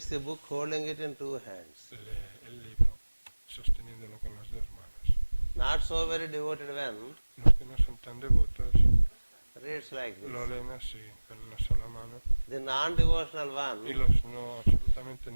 the book holding it in two hands. lee el libro sosteniéndolo con las dos manos. Not so very devoted one Los que no son tan devotos reads like lo this. leen así, con una sola mano. The non-devotional Y one, los no, absolutamente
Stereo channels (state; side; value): inverted; both; correlation -1.00